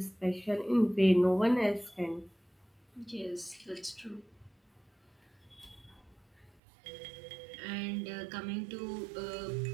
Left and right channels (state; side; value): drops out; left; at 6.5 s